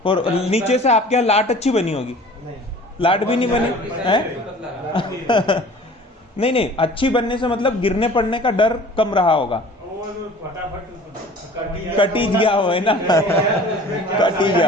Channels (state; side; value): normal; both; correlation 0.46